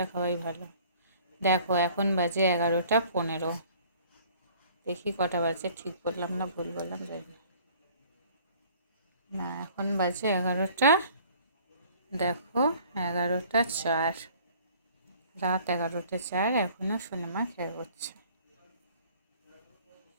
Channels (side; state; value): both; inverted; correlation -0.53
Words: খাওয়াই ভালো। দেখো এখন বাজে 11টা 15। দেখি কটা বাজে, ঠিক বললাম না ভুল বললাম জানি না। না এখন বাজে 11টা, দেখো 11টা 4, রাত 11টা 4, এখনো সোনামা খেয়ে করছে।